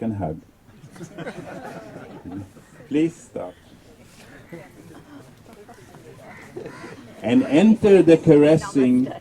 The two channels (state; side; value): identical; both; correlation 1.00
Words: hug. Please stop. And enter the caressing